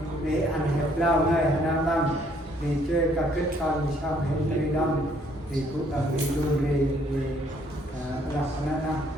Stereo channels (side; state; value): both; normal; correlation 0.65